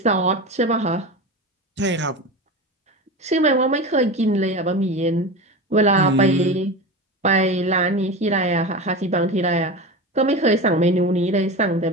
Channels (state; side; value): normal; both; correlation 0.26